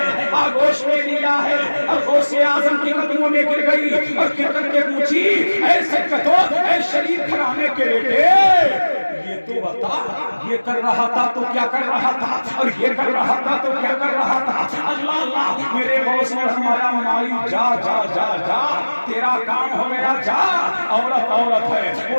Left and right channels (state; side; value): inverted; both; correlation -1.00